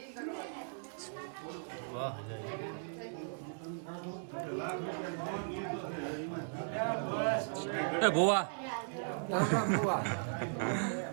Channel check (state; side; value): silent; left; digital silence